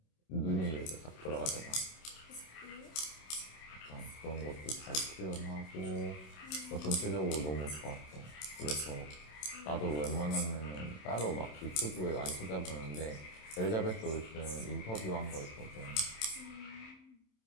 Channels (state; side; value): late; right; 27 ms